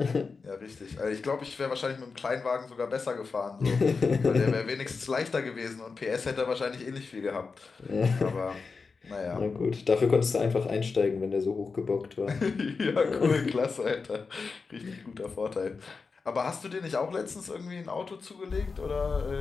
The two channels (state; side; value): quieter; right; 4.7 dB